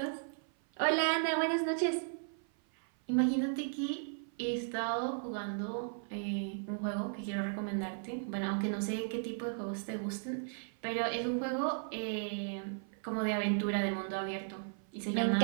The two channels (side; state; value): left; silent; 54 dB below the other